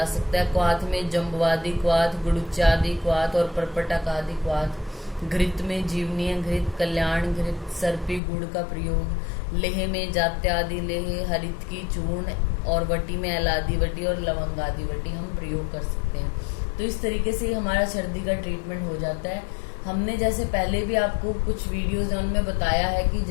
सकता है। क्वाथ में जम्बवादी क्वाथ, गुड़ुचादि क्वाथ और परपटकादि क्वाथ। घृत में जीवनीय घृत, कल्याण घृत, सर्पी गुड़ का प्रयोग। लेह में जात्यादि लेह, हरित की चूर्ण और वटी में एलादि वटी और लवंगादि वटी हम प्रयोग कर सकते हैं। तो इस तरीके से हमारा सर्दी का ट्रीटमेंट हो जाता है। हमने जैसे पहले भी आपको कुछ वीडियोज उनमें बताया है कि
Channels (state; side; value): drops out; right; at 8.2 s